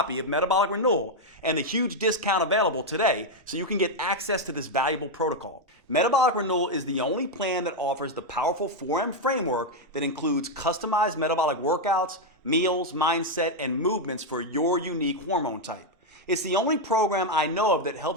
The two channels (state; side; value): normal; both; correlation 0.02